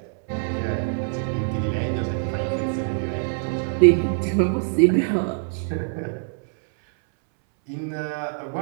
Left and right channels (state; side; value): silent; left; 63 dB below the other